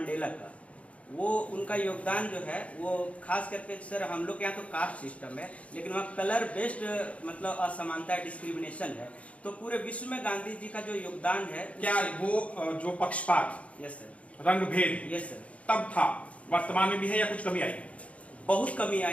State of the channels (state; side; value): late; right; 0.065 ms